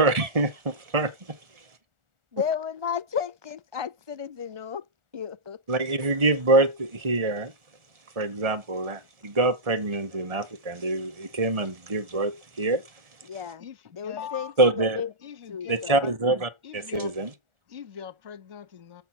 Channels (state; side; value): late; left; 1.7 ms